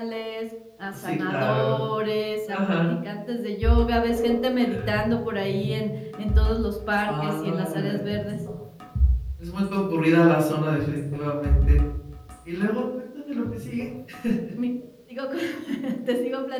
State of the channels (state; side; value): identical; both; correlation 1.00